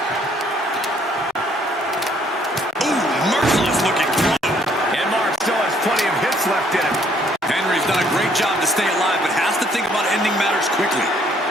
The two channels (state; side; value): normal; both; correlation 0.64